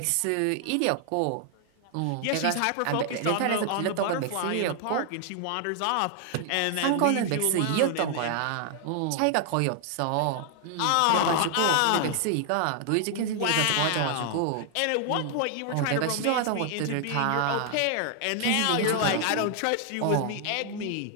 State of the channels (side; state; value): both; different; correlation 0.00